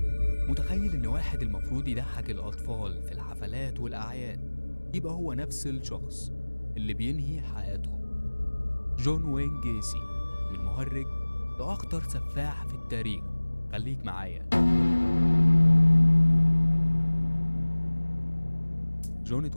متخيل إن واحد المفروض يضحك الأطفال في الحفلات والأعياد يبقى هو نفس الشخص اللي بينهي حياتهم. جون وين جيسي، من مهرج لأخطر سفاح في التاريخ. خليك معايا. جون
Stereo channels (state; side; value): inverted; both; correlation -1.00